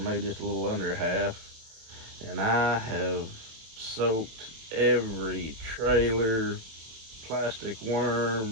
just a little under a half, and I have soaked every trailer plastic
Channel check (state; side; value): late; left; 27 ms